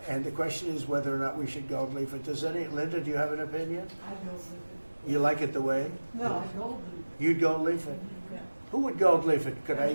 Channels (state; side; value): inverted; both; correlation -1.00